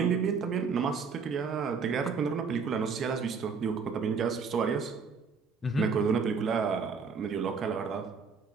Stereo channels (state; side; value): quieter; left; 5.4 dB